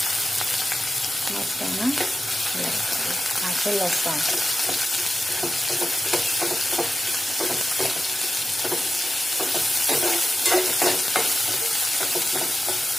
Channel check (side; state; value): both; normal; correlation 0.93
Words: મસાલા આ છે લસણ.